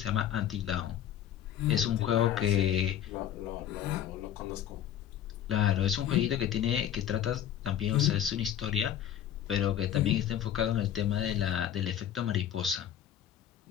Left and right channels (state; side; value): quieter; right; 10.3 dB